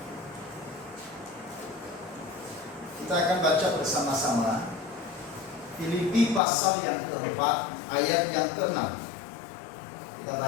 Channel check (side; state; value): right; drops out; at 6.4 s